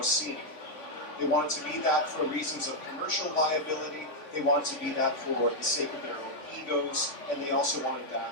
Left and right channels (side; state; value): right; late; 3.5 ms